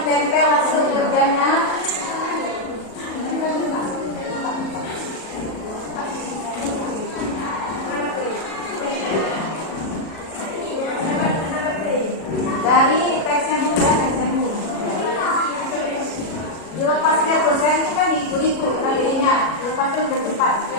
hasil kerjanya. Dari teksnya dulu ya, teksnya dulu. Dilepasnya tuh, saya itu kan itu KBI-nya. Lepasnya udah cepat.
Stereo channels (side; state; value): right; late; 37 ms